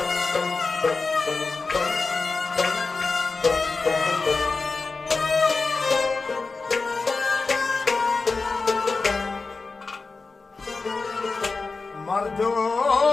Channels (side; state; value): right; quieter; 4.1 dB